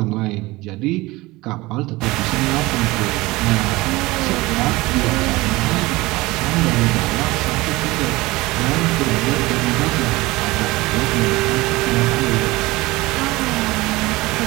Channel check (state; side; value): quieter; left; 20.8 dB